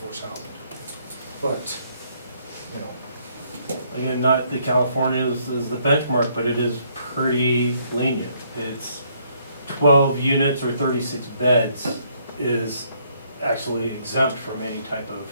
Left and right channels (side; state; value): both; inverted; correlation -0.69